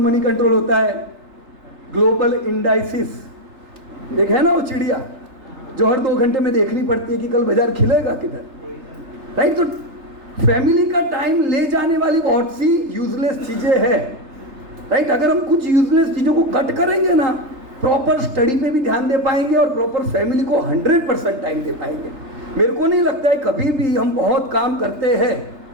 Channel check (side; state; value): left; late; 3.3 ms